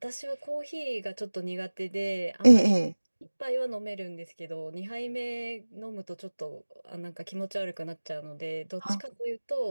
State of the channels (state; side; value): inverted; both; correlation -1.00